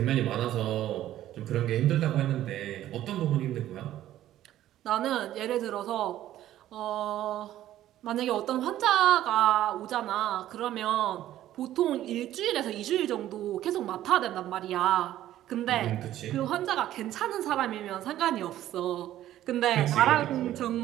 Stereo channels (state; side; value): quieter; left; 13.1 dB